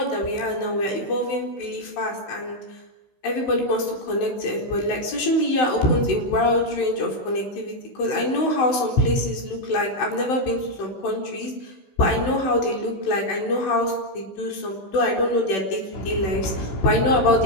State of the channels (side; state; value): right; late; 16 ms